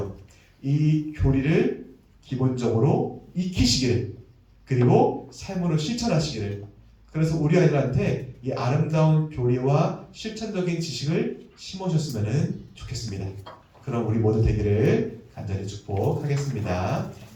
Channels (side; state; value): both; identical; correlation 1.00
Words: 이 교리를 기본적으로 익히시기를, 그리고 삶으로 실천하시기를, 그래서 우리 아이들한테 이 아름다운 교리와 실천적인 지식을 심으셨으면 좋겠습니다. 그럼 우리 모두 되기를 간절히 축복하겠습니다.